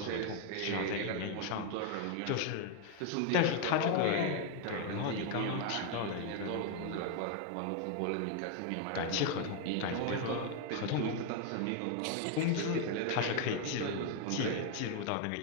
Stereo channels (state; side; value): different; both; correlation 0.01